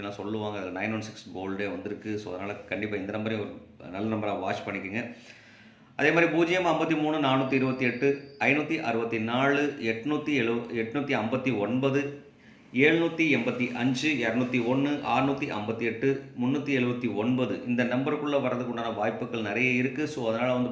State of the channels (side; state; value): both; identical; correlation 1.00